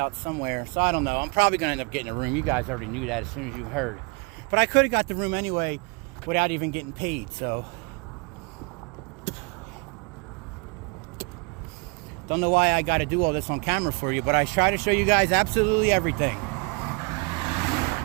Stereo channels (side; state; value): left; quieter; 30.2 dB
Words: somewhere. So I don't know. I'm probably going to end up getting a room. You guys already knew that as soon as you heard. But I could have got the room anyway without even getting paid. So don't know why I got to do all this on camera for you. But I try to show you guys absolutely everything.